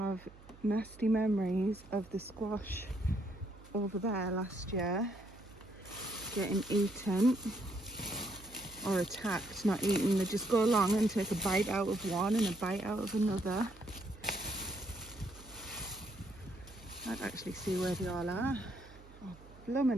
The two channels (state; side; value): noise; right; hum, 20 dB below the sound